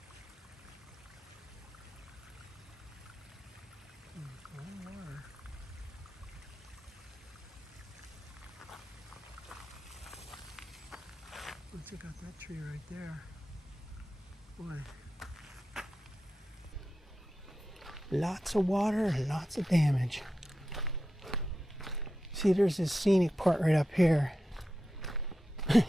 Oh, check out that tree right there. Boy. Lots of water and lots of damage. See, there's this scenic part right up here.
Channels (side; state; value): both; normal; correlation 0.91